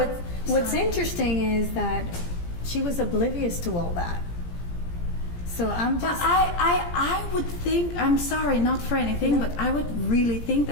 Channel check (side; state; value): right; late; 17 ms